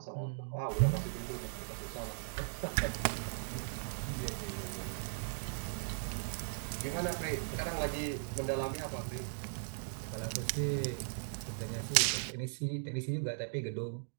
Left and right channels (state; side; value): silent; left; digital silence